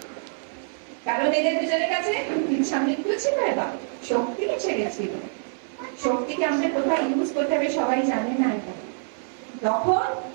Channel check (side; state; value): left; silent; digital silence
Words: কারণ এদের দুজনের কাছে ইচ্ছা মৃত্যু ছিল, এবার শক্তি এসে গেছিল। শক্তিকে আমাদের কোথায় ইউজ করতে হবে সবাই জানে না এটা। তখন